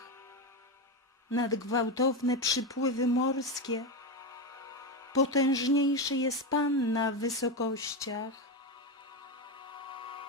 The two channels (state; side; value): normal; both; correlation 0.13